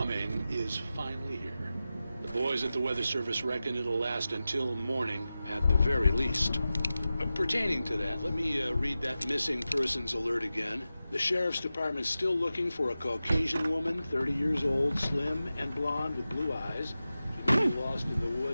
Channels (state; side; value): inverted; both; correlation -0.94